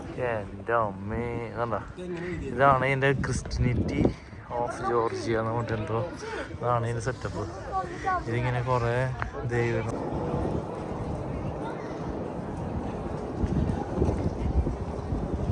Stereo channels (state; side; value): identical; both; correlation 1.00